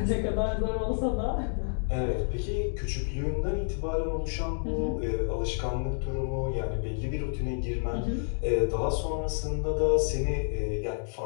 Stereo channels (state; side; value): silent; right; digital silence